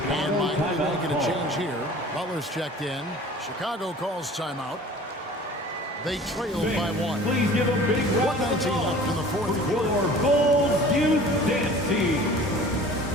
Miami making a change here. Butler's checked in. Chicago calls timeout. They trail by 1. Please give a big round of 1:19 left in the fourth for quarter. your Bulls Youth Dance Team.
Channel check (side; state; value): both; normal; correlation 0.45